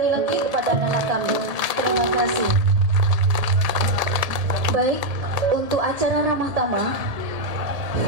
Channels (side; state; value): left; late; 1.7 ms